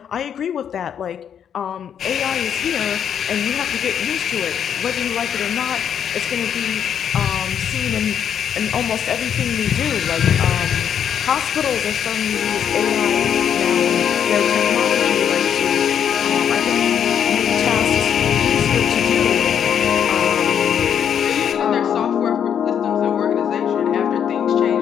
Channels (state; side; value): quieter; right; 8.6 dB